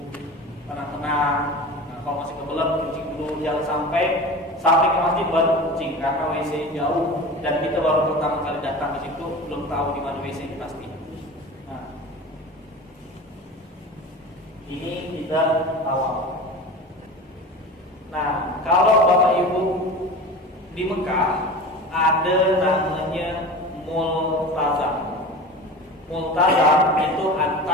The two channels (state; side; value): normal; both; correlation 0.33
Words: tenang-tenang. Nah, kalau masih kebelet kencing dulu, jangan sampai ke masjid baru kencing karena WC jauh dan kita baru pertama kali datang ke situ belum tahu di mana WC ini pasti. Ini kita tawaf. Nah, kalau Bapak Ibu di Mekah ada namanya multazam. Multazam itu